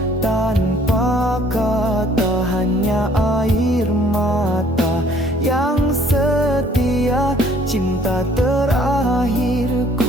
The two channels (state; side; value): normal; both; correlation 0.59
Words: tanpa kata, hanya air mata yang setia. Cinta